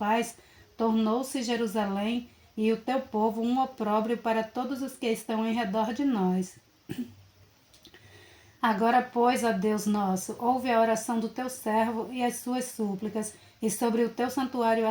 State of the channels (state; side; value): identical; both; correlation 1.00